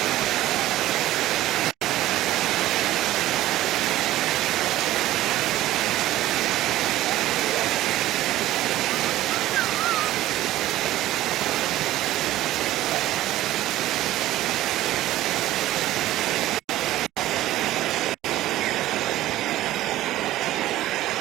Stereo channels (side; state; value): left; quieter; 15.1 dB